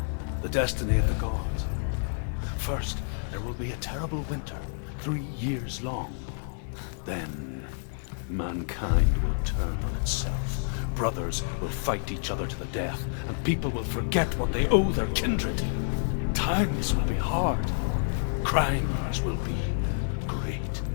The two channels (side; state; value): right; silent; digital silence